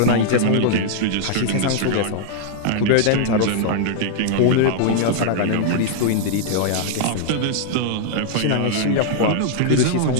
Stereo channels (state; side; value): different; both; correlation -0.01